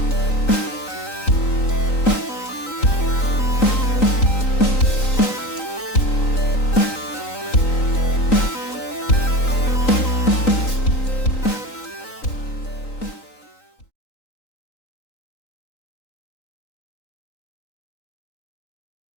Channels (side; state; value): right; late; 3.9 ms